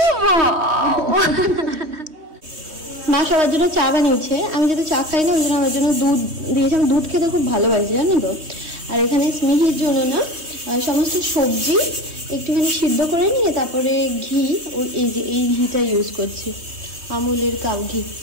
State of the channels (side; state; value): left; late; 3.2 ms